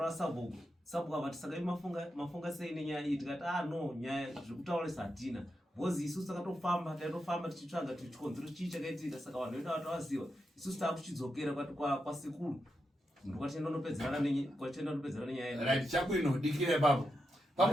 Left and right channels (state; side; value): normal; both; correlation 0.86